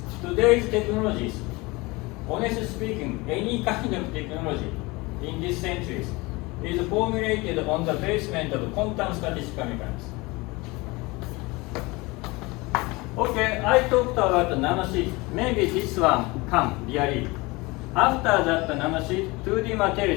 Today's technologies, honestly speaking, any kind of technology in this century is formulated on the basement of quantum statistical mechanics. Okay, I talked about the nanosheet. Maybe this one come really. After that, the nanosheet, 2D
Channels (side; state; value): right; quieter; 23.8 dB